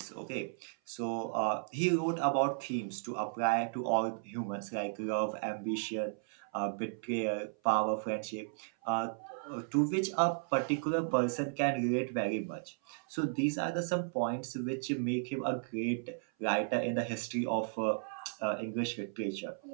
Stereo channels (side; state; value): left; silent; 55 dB below the other